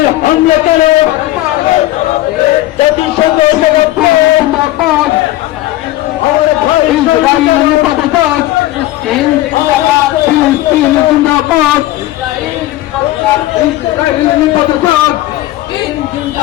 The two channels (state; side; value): quieter; right; 16.3 dB